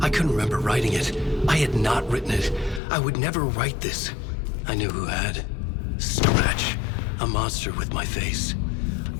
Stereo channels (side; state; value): right; drops out; at 2.8 s